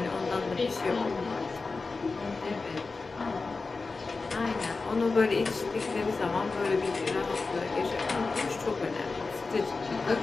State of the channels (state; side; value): quieter; right; 4.0 dB